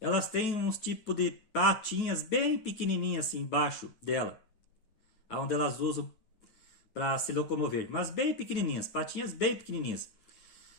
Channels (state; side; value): late; right; 9.4 ms